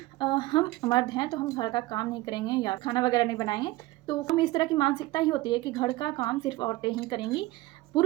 हम मर्द हैं तो हम घर का काम नहीं करेंगे या खाना वगैरह नहीं बनाएंगे। तो हम इस तरह की मानसिकता ही होती है कि घर का काम सिर्फ औरतें ही करेंगी,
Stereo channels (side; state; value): left; quieter; 19.3 dB